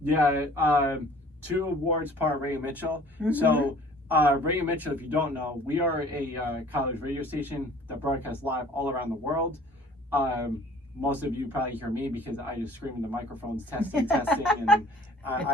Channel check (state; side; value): normal; both; correlation 0.51